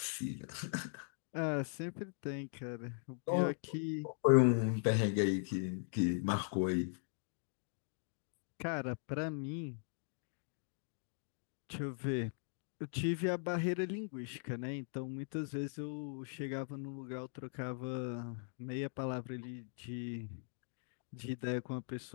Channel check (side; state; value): right; silent; digital silence